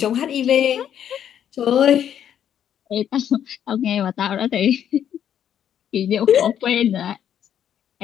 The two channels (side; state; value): right; quieter; 9.6 dB